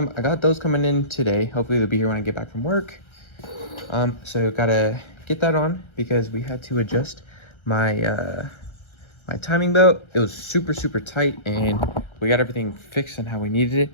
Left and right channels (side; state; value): right; late; 1.3 ms